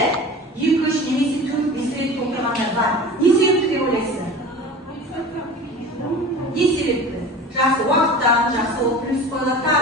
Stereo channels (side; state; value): both; normal; correlation 0.37